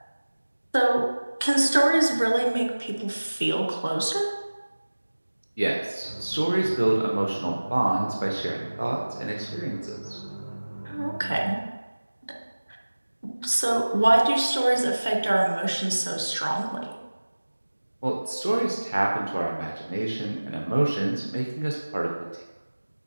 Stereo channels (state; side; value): inverted; both; correlation -1.00